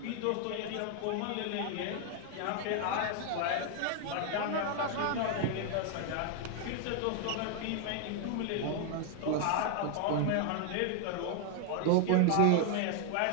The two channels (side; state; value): both; different; correlation 0.00